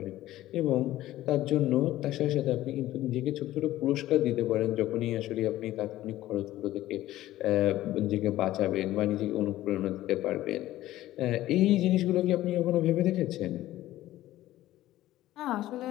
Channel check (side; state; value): right; quieter; 15.0 dB